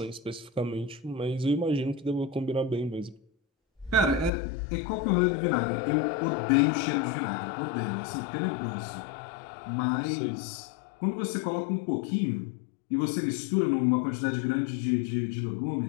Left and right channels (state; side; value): drops out; right; at 4.3 s